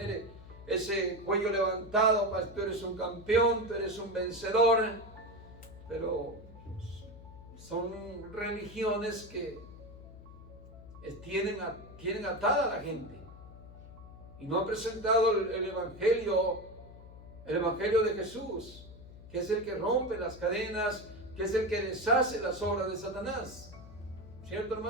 ese cuello levantado: pues, tú eres un campeón, tú eres un vencedor. Pero son religiones que tienen atada a la gente y no han presentado el Evangelio de Jesús, que es el que rompe las cadenas, que es el que deshace las obras de Satanás. ¿Cierto,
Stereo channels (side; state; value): left; noise; hum, 17 dB below the sound